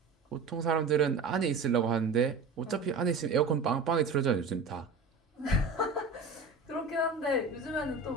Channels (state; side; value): quieter; left; 4.1 dB